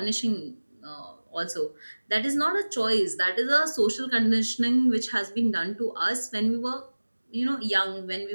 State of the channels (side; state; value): both; inverted; correlation -1.00